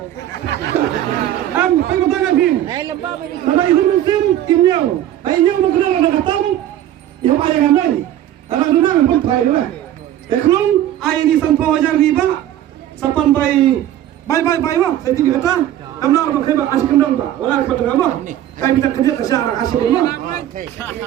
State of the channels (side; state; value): left; quieter; 12.2 dB